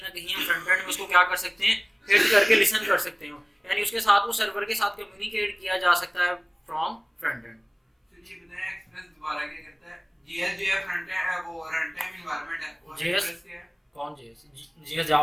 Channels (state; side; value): identical; both; correlation 1.00